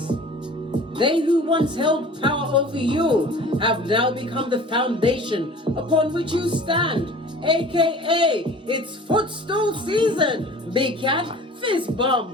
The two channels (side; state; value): both; normal; correlation 0.44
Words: They who once held power over you have now become the foundation upon which you stand, aka it's footstool season. Big Cat, fist